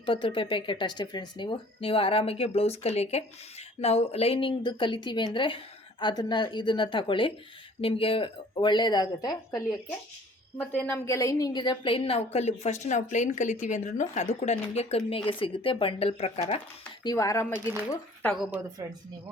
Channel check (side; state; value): both; normal; correlation 0.52